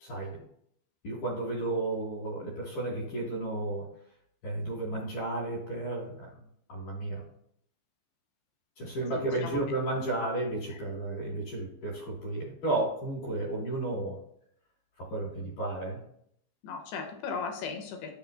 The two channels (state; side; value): late; right; 15 ms